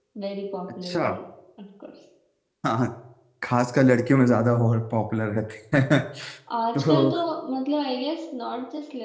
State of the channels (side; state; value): both; identical; correlation 1.00